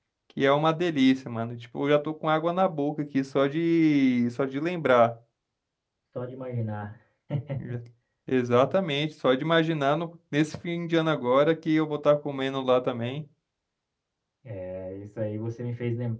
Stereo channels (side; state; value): both; identical; correlation 1.00